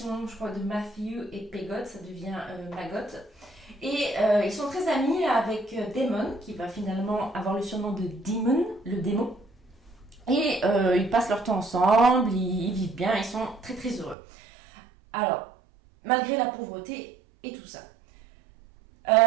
je crois, de Matthew et Pegott, ça devient Maggot. Et ils sont très amis avec Damon, qui va finalement avoir le surnom de Demon, le démon. Et ils passent leur temps ensemble, ils vivent bien, ils sont très très heureux. Alors, malgré la pauvreté et tout ça,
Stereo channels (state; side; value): drops out; left; at 14.2 s